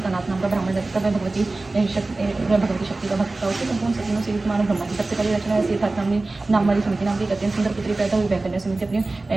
कनाथ नाम का ब्राह्मण रहता है। वह भगवती शक्ति का भक्त था। उसके संपूर्ण सपनों से युक्त मानव ब्रह्मा जी सबसे पहले रचना ऐसी था। नाम वाली सुमिति नाम की एक अत्यंत सुंदर पुत्री पैदा हुई। वह कन्या सुमिति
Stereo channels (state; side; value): quieter; left; 3.2 dB